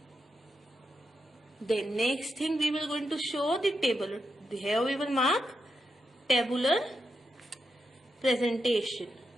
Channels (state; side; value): normal; both; correlation 0.85